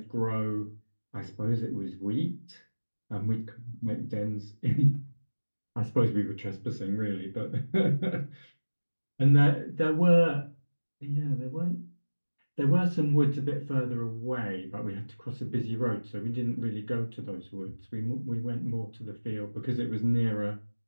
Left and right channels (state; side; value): inverted; both; correlation -1.00